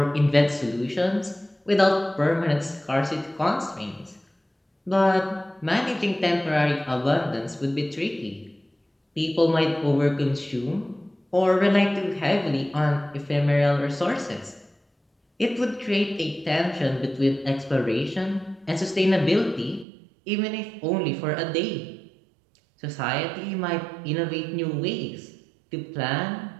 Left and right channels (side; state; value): left; drops out; at 19.9 s